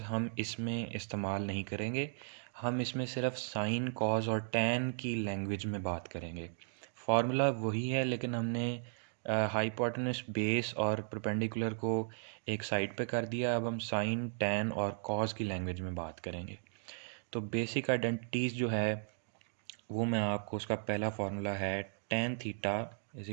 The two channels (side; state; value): left; silent; digital silence